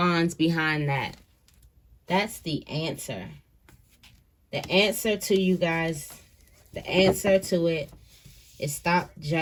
behind that. That's the answer. The answer to you guys, the answer to it is stop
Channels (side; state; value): both; identical; correlation 1.00